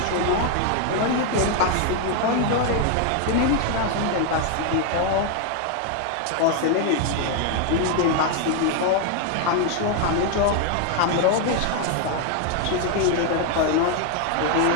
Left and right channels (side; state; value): both; different; correlation 0.01